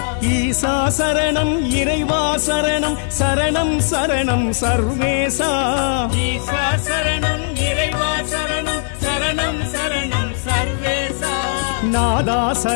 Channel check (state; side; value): silent; right; digital silence